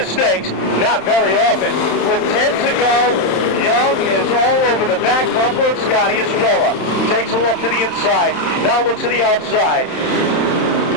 not very often. With 10 to go, Young is all over the back bumper of Scotty Estrella. Takes a look to the inside, now looks to the outside.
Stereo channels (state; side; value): late; right; 31 ms